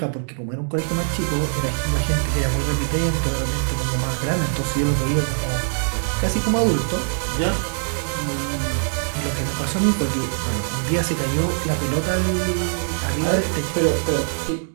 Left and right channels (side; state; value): left; silent; digital silence